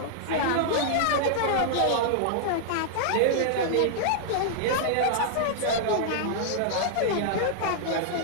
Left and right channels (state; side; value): different; both; correlation -0.01